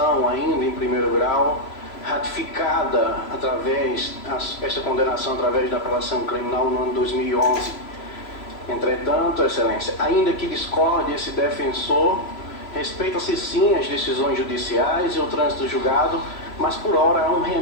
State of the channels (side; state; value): right; late; 3.0 ms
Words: ainda em primeiro grau, ratificada esta condenação através da apelação criminal no ano 2011. Entretanto, Excelência, ainda que discorde esse defensor, respeita-se sim as decisões judiciais e o trânsito julgado, mas por hora há um